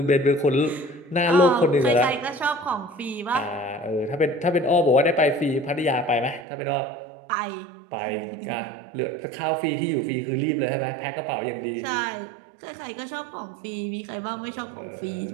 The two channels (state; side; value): drops out; left; at 6.5 s